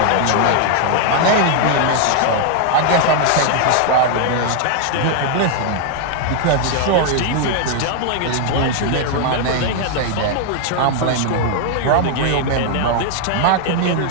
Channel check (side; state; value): both; different; correlation 0.00